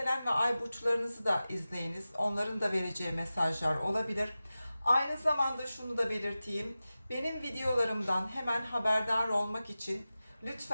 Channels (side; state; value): both; inverted; correlation -0.95